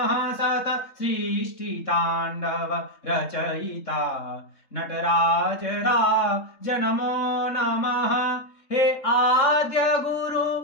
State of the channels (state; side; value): late; right; 3.7 ms